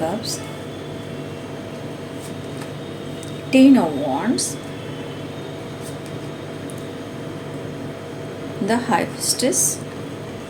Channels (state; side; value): identical; both; correlation 1.00